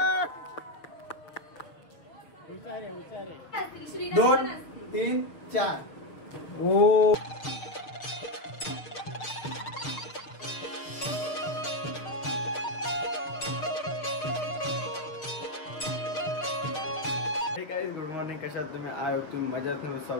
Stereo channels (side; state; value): right; late; 6.6 ms